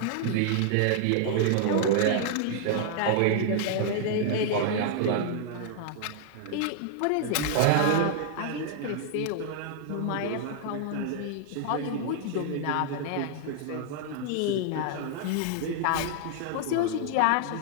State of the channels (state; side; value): different; both; correlation -0.01